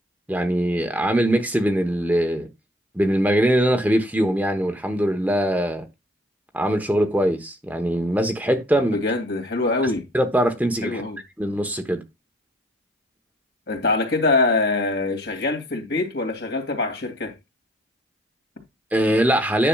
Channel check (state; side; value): normal; both; correlation 0.60